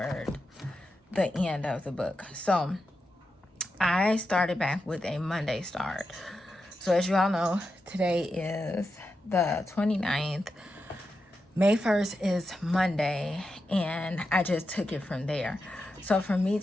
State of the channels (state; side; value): normal; both; correlation 0.88